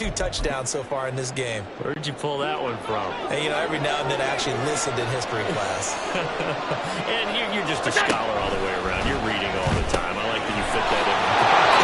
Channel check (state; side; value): identical; both; correlation 1.00